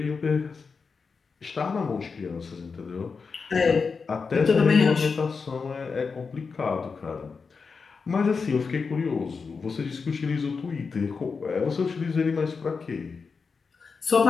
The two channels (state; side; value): quieter; right; 5.1 dB